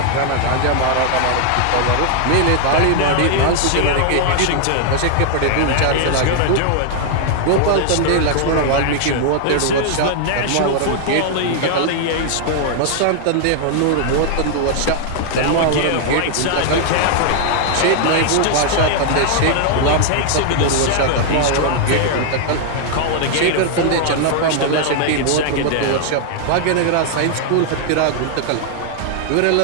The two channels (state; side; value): different; both; correlation 0.00